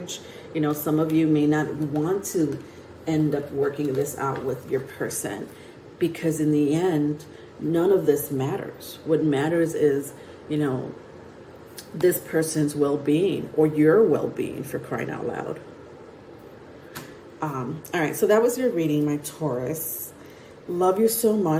you know, some of you may not want to end up working this out with your person, because in the end, none of this matters. What matters is, you know, this person's well-being, or your well-being, for crying out loud. All right, so that was your reading, my Taurus. Love you so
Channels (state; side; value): identical; both; correlation 1.00